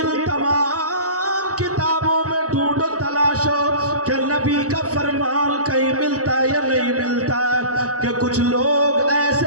تمام کتابوں میں ڈھونڈو، تلاشو کہ نبی کا فرمان کہیں ملتا ہے یا نہیں ملتا ہے، کہ کچھ لوگ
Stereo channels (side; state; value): left; late; 0.66 ms